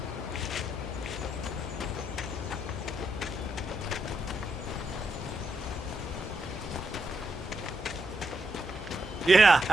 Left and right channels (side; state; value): both; normal; correlation 0.81